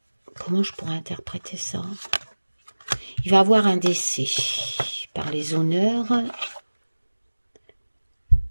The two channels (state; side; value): inverted; both; correlation -1.00